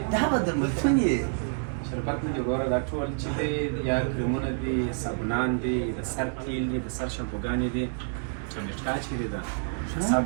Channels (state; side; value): silent; left; 59 dB below the other